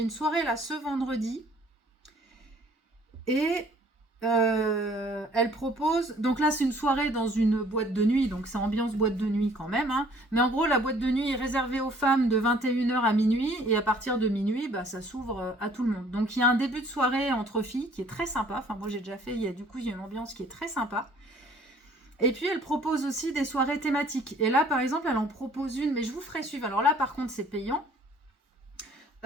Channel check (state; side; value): normal; both; correlation 0.57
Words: soirée là ce vendredi. Et... elle propose, donc là c'est une soirée dans une boîte de nuit, donc c'est ambiance boîte de nuit quand même, hein. Mais en gros la boîte de nuit est réservée aux femmes de 21h à minuit, et à partir de minuit ça s'ouvre à tout le monde. Donc il y a un début de soirée entre filles qui est très sympa, enfin moi j'ai déjà fait, il y a une ambiance qui est très sympa. Et puis elle propose aussi des soirées thématiques, et là par exemple elle en propose une, mais je vous ferai suivre. Alors là par contre c'est payant.